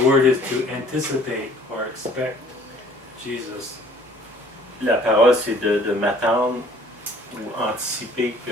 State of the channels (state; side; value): normal; both; correlation 0.55